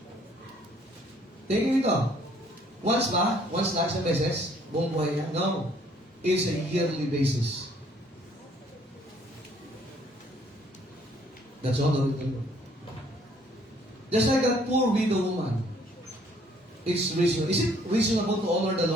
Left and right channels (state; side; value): normal; both; correlation 0.62